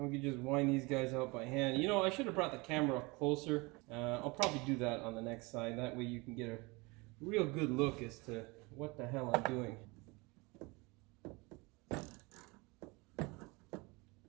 can just wind these guys out by hand. You know, I should have brought the camera up closer. I'll probably do that on the next side. That way you can get a real good look as to what the hell I'm doing.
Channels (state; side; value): quieter; left; 26.2 dB